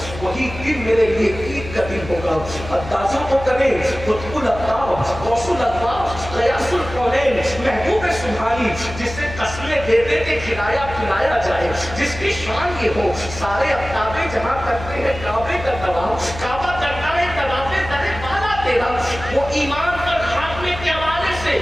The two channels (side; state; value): left; noise; hum, 11 dB below the sound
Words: وہی دن میرے لیے عید کا دن ہوگا. اندازہ تو کریں قطب الأقطاب غوث الألباب غیاث الکونین محبوب سبحانی جسے قسمیں دے دے کے کھلایا پلایا جائے, جس کی شان یہ ہو سارے اقطابے جہاں کرتے ہیں کعبے کا طواف, کعبہ کرتا ہے طواف در بالا تیرا, وہ ایمان پر خاتمے کے حوالے سے